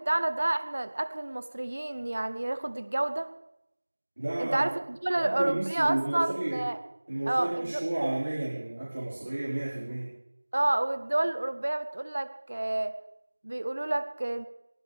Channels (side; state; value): both; inverted; correlation -1.00